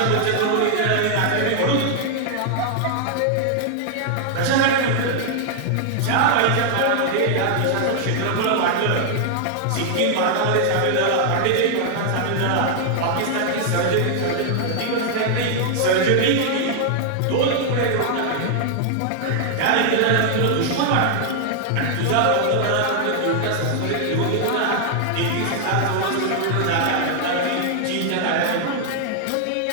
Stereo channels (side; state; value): both; different; correlation 0.00